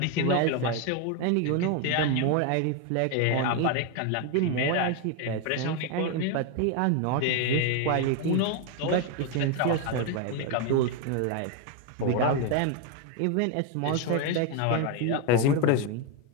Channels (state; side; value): different; both; correlation 0.01